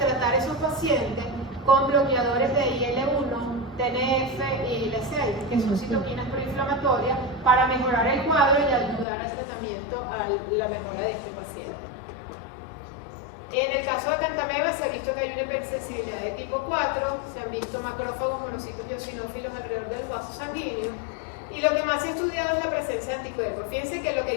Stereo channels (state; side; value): drops out; right; at 9.1 s